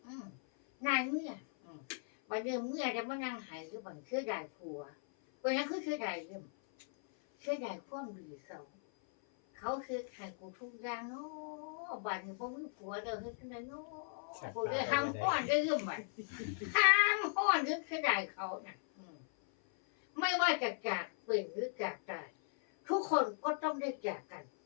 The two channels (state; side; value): silent; right; 52 dB below the other